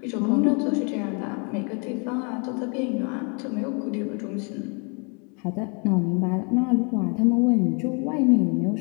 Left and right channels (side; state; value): right; quieter; 35.4 dB